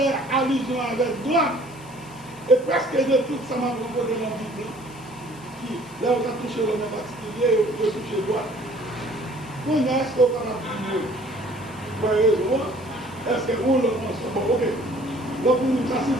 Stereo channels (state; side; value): noise; left; hiss, 23 dB below the sound